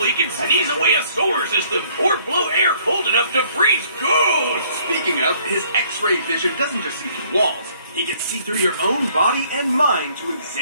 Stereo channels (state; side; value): inverted; both; correlation -0.61